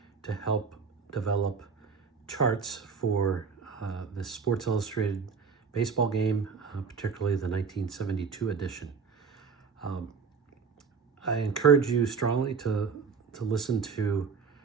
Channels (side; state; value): left; quieter; 5.5 dB